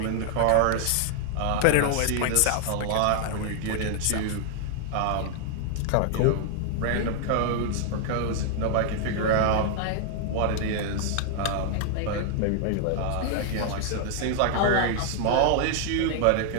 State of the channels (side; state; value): both; different; correlation 0.00